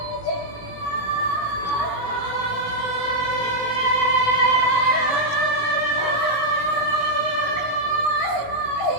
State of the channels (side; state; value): right; late; 17 ms